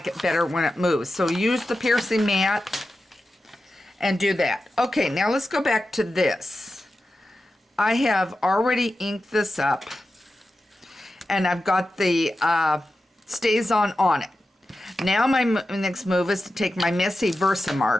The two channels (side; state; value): both; normal; correlation 0.92